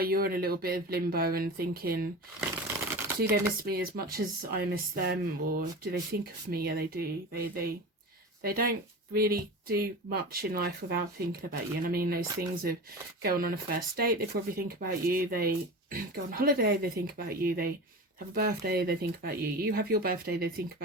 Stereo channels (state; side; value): normal; both; correlation 0.31